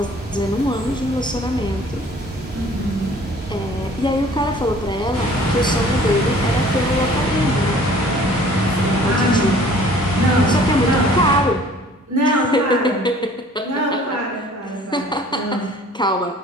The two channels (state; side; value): normal; both; correlation 0.52